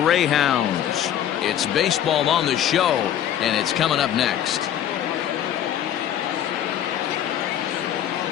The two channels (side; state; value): right; quieter; 10.6 dB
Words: It's Baseball on the Show, and it's coming up next.